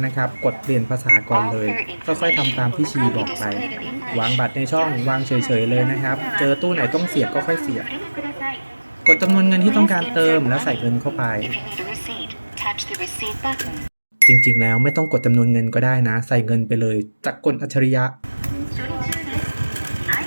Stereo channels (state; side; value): inverted; both; correlation -1.00